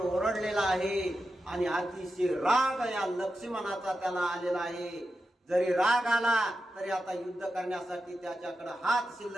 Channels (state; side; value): normal; both; correlation 0.90